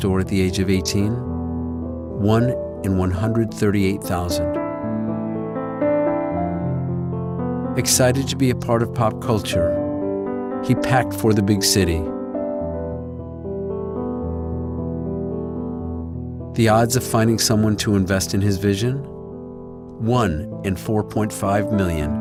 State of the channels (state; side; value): identical; both; correlation 1.00